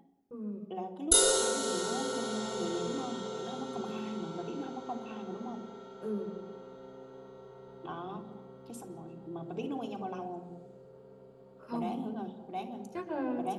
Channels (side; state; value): both; identical; correlation 1.00